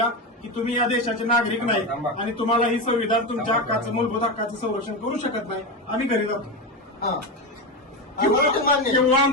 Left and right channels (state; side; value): normal; both; correlation 0.16